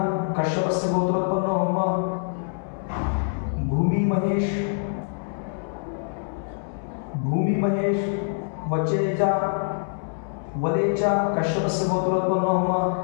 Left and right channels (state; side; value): silent; right; 61 dB below the other